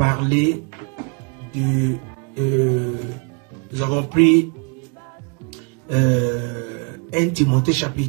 nous avons pris 1 Timothée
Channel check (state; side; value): quieter; left; 34.5 dB